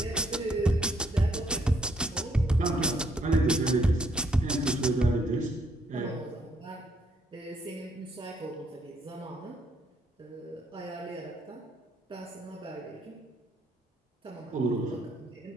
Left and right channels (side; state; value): both; normal; correlation 0.71